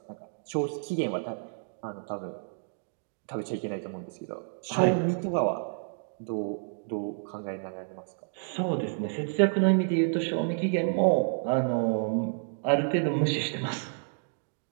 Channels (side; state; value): left; silent; digital silence